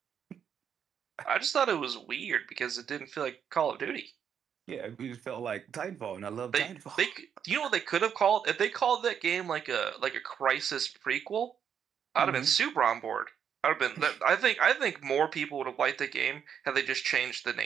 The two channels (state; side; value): quieter; left; 8.1 dB